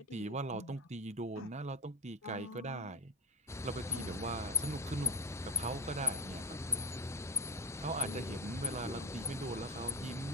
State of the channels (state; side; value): normal; both; correlation 0.20